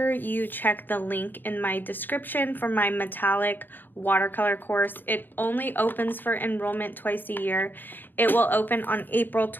you check the link in my description for my metallic watercolor course. It only opens for enrollment twice a year. It will open on April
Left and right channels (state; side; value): late; right; 0.091 ms